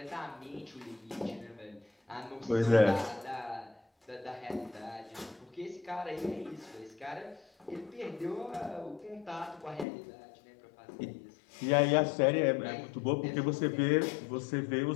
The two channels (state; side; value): drops out; right; at 9.9 s